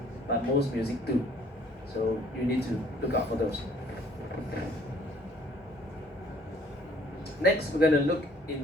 but most music do. So you need to look out for those. Next, we're going to look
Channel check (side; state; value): both; normal; correlation 0.59